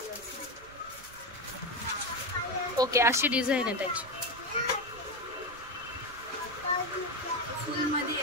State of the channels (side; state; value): right; noise; rumble, 22 dB below the sound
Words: ओके अशी डिझाईन आहे त्याची.